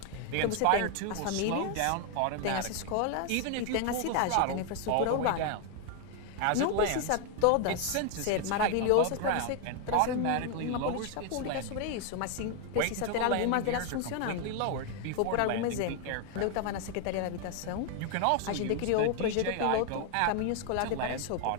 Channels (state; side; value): different; both; correlation 0.01